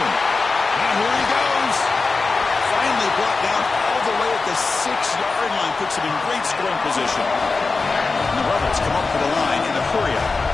And here he goes. Finally brought down all the way at the 6-yard line. Puts him in great scoring position. And the Rebels come up for the line in a hurry-up.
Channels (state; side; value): quieter; right; 4.0 dB